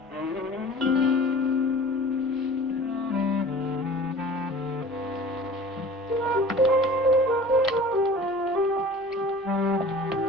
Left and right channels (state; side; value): normal; both; correlation 0.43